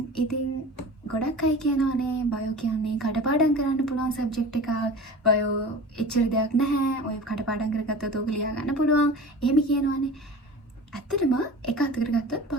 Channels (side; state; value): both; normal; correlation 0.37